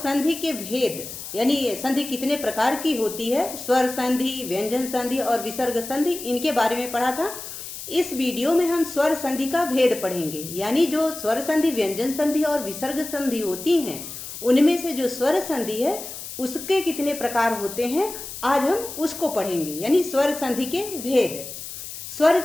के भेद यानी संधि कितने प्रकार की होती है, स्वर संधि, व्यंजन संधि और विसर्ग संधि, इनके बारे में पढ़ा था। इस वीडियो में हम स्वर संधि का भेद पढ़ेंगे, यानी जो स्वर संधि, व्यंजन संधि और विसर्ग संधि होती हैं, उनमें से जो स्वर संधि है उसके कितने प्रकार होते हैं, आज हम उसको पढ़ेंगे, यानी स्वर संधि के भेद। स्वर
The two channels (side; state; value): left; noise; hiss, 10 dB below the sound